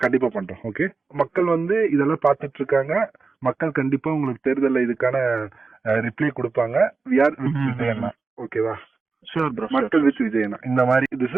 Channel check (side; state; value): left; quieter; 4.3 dB